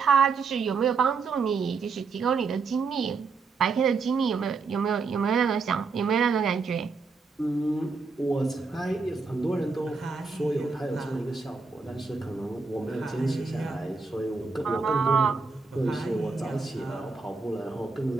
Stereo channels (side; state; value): left; quieter; 4.6 dB